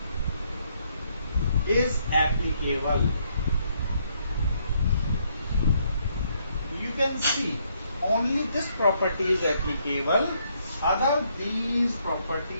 is applicable. You can see only this property is applicable, other these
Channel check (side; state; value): both; inverted; correlation -0.72